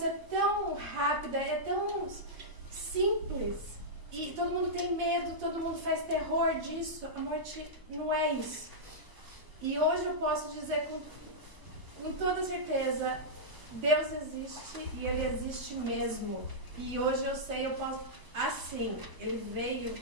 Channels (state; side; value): late; left; 1.0 ms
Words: tão rápida, é tão simples. E todo mundo tem medo, todo mundo faz terror disso. A morte não é isso. E hoje eu posso dizer com toda certeza, Deus existe e Ele existe mesmo. E hoje eu sei, eu posso, assim, Ele veio